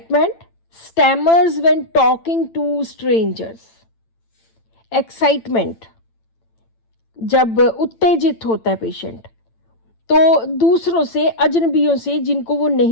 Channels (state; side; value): late; right; 8.9 ms